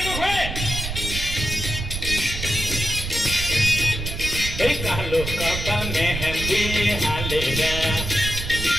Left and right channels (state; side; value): noise; right; rumble, 5 dB below the sound